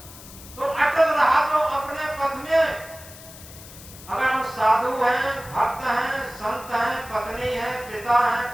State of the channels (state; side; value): noise; left; hiss, 17 dB below the sound